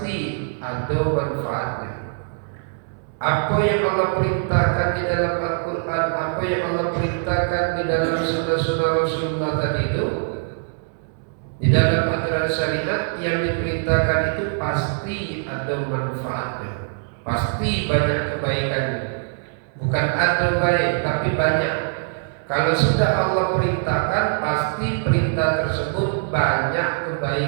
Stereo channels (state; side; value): silent; left; 64 dB below the other